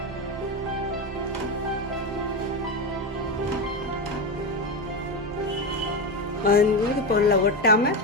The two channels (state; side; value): normal; both; correlation 0.15